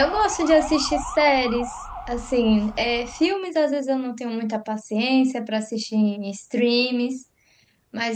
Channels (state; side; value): identical; both; correlation 1.00